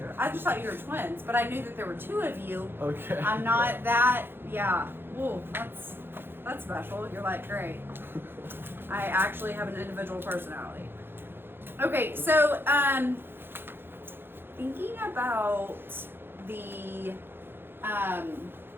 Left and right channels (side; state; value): left; late; 0.10 ms